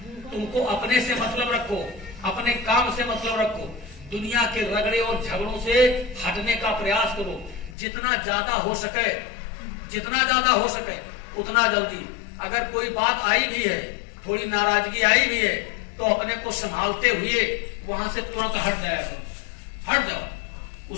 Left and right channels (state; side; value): drops out; right; at 7.8 s